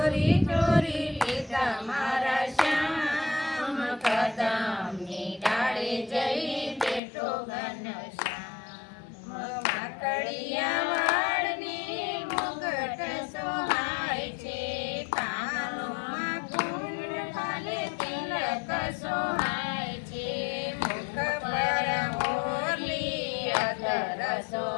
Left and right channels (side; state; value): right; drops out; at 7.0 s